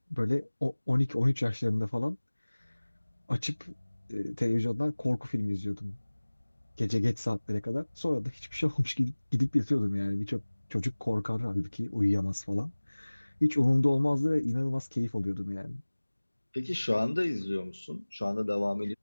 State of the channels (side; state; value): both; inverted; correlation -1.00